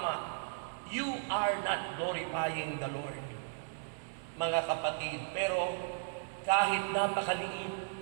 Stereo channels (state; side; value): silent; left; digital silence